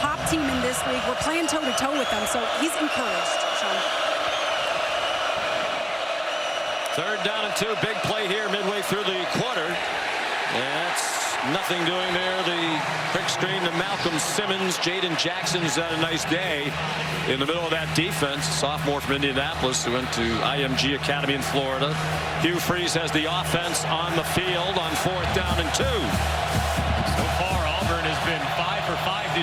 team in this league. We're playing toe-to-toe with them, so he's encouraged, Sean. 3rd down and 2. Big play here midway through the quarter. And that's nothing doing there. The quick screen to Malcolm Simmons. Jaden Jackson's had a nice day in the middle of that defense. Sophomore from Indianapolis who went to IMG Academy in Florida. Hugh Freeze has the offense on the field on 4th down and 2. So far, Auburn has been 5 for 5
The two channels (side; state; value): both; identical; correlation 1.00